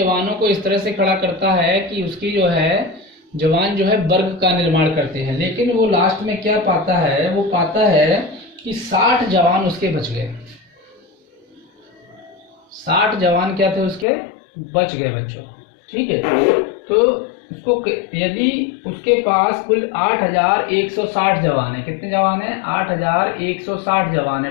को इस तरह से खड़ा करता है कि उसकी जो है जवान जो है वर्ग का निर्माण करते हैं। लेकिन वो लास्ट में क्या पाता है, वो पाता है कि 60 जवान उसके बच गए। 60 जवान क्या थे उसके, बच गए बच्चों। ठीक है, तो उसको यदि उसके पास कुल 8160 जवान है, कितने जवान है 8160 जवान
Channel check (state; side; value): drops out; right; at 14.1 s